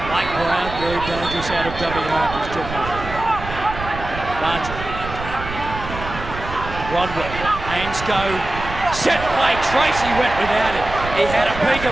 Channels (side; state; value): right; noise; rumble, 9 dB below the sound